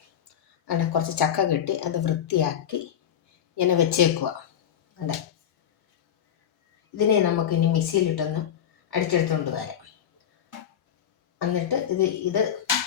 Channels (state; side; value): quieter; right; 9.5 dB